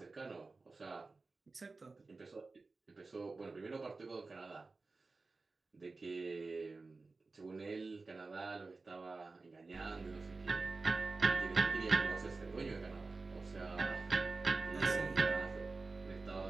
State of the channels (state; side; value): quieter; left; 3.8 dB